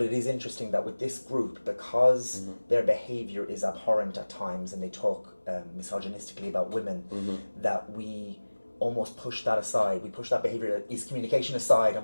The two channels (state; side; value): inverted; both; correlation -1.00